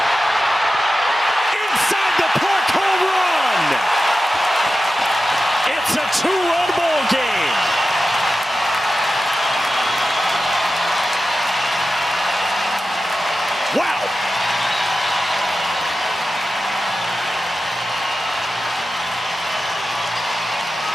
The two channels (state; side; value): normal; both; correlation 0.92